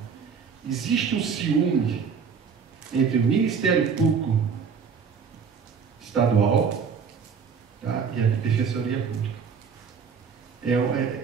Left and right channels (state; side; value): quieter; left; 6.2 dB